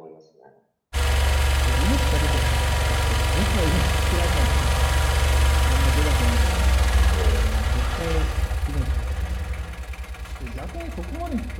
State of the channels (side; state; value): both; identical; correlation 1.00